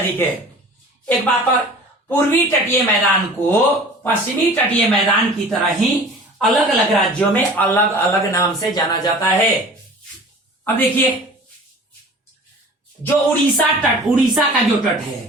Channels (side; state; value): both; normal; correlation 0.43